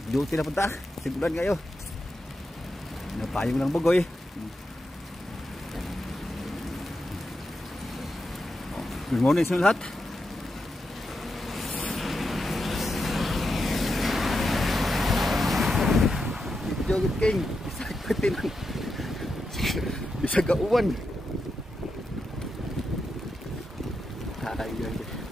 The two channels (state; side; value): normal; both; correlation 0.87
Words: Duty na punta. Sigulan kayo. Napayong lang bugoy. Good morning sa lahat. Joget king. Isa katin. Isa gauwan.